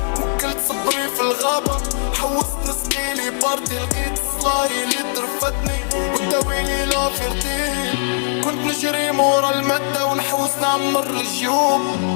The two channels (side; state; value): right; silent; 66 dB below the other